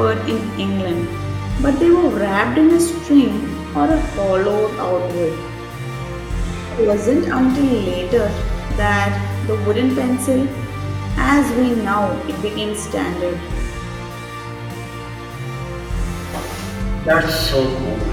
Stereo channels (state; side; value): identical; both; correlation 1.00